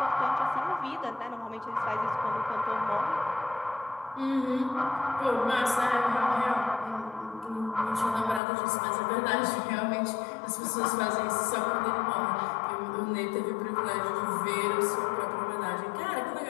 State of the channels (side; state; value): right; drops out; at 8.4 s